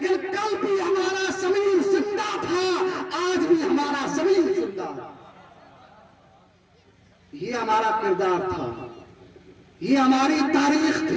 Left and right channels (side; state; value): both; identical; correlation 1.00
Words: کل بھی ہمارا ضمیر زندہ تھا، آج بھی ہمارا ضمیر زندہ. یہ ہمارا کردار تھا، یہ ہماری تاریخ